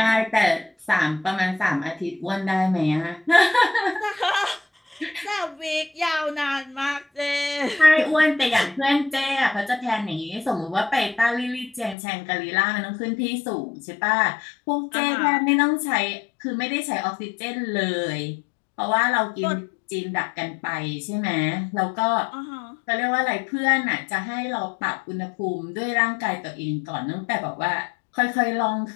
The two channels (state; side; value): drops out; right; at 12.0 s